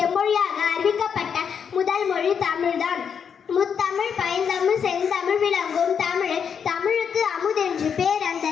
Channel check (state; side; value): quieter; right; 7.1 dB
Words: அறிவிக்கப்பட்ட முதல் மொழி தமிழ்தான். முத்தமிழ், பைந்தமிழ், செந்தமிழ் விளங்கும் தமிழ், தமிழுக்கு அமுதென்று பேர். அந்த